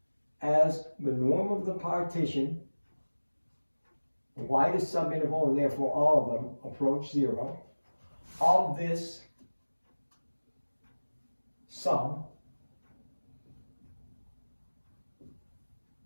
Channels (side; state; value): both; inverted; correlation -1.00